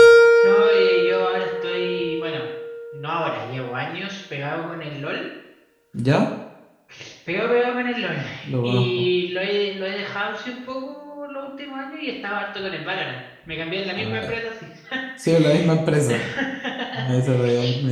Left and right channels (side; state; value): both; identical; correlation 1.00